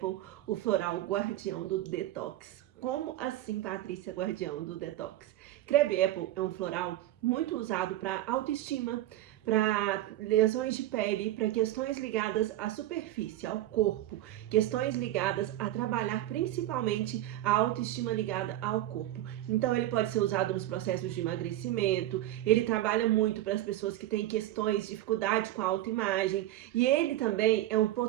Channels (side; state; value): left; quieter; 14.4 dB